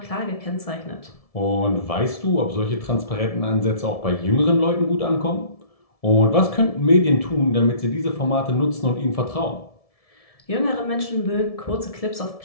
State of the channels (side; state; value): right; late; 1.7 ms